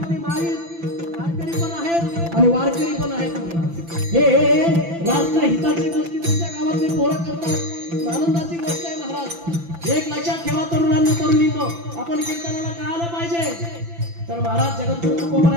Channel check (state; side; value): late; left; 5.9 ms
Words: माळी वारकरी पण आहेत आणि वारकरी पण आहेत महाराज. हे राष्ट्र हिताची गोष्टी तुमच्या गावातले पोरं करतात, आनंदाची गोष्ट आहे महाराज. एक लक्षात ठेवा तरुणांना तरुणींनो, आपण कीर्तनाला काय आलं पाहिजे तर महाराज जगद्गुरु